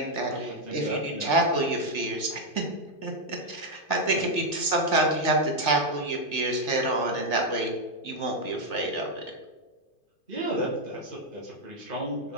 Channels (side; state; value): right; late; 2.5 ms